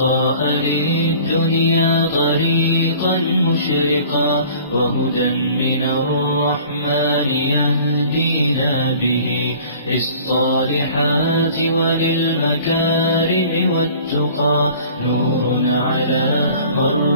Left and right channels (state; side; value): inverted; both; correlation -0.48